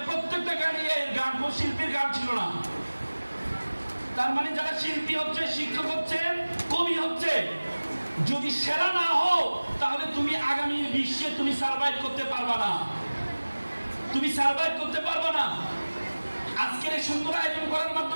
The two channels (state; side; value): inverted; both; correlation -1.00